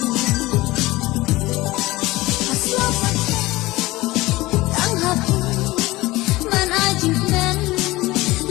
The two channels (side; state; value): right; quieter; 19.4 dB